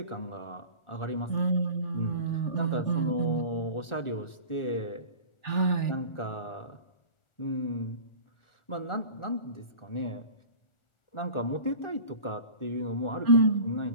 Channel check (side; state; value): right; late; 1.4 ms